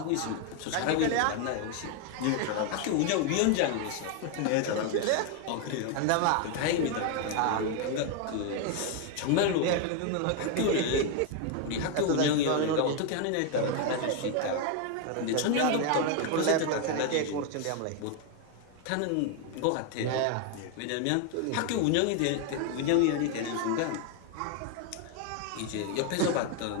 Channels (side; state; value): both; different; correlation 0.01